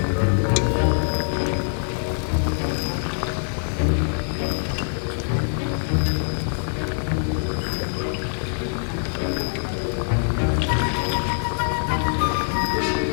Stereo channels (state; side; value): silent; right; digital silence